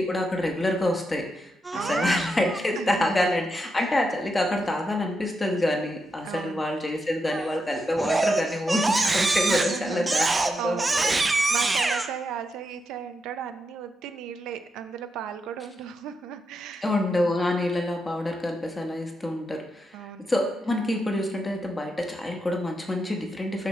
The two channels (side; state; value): both; normal; correlation 0.84